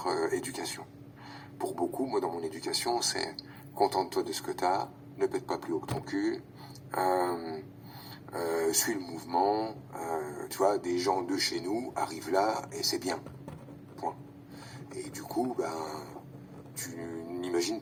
éducation. Pour beaucoup, moi dans mon éducation, c'est contente-toi de ce que t'as, ne pète pas plus haut que ton cul, suis le mouvement, tu vois, des gens de chez nous arrivent là et c'est bien. Point. Et du coup, ben, tu n'imagines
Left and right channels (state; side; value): identical; both; correlation 1.00